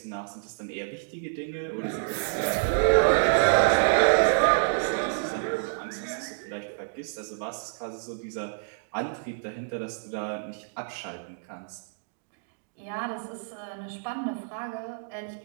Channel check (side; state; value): left; silent; digital silence